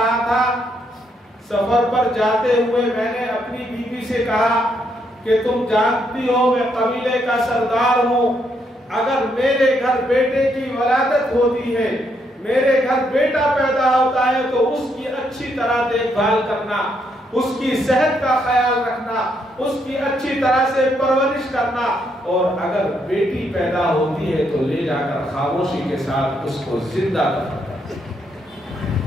تھا، سفر پر جاتے ہوئے میں نے اپنی بیوی سے کہا کہ تم جانتی ہو میں قبیلے کا سردار ہوں، اگر میرے گھر بیٹے کی ولادت ہوتی ہے، میرے گھر بیٹا پیدا ہوتا ہے تو اس کی اچھی طرح دیکھ بھال کرنا، اس کی صحت کا خیال رکھنا، اس کی اچھی طرح سے پرورش کرنا، اور اگر بیٹی پیدا ہوتی ہے تو لے جا کر خاموشی کے ساتھ اس کو زندہ دفن کرنا۔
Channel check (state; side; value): normal; both; correlation 0.75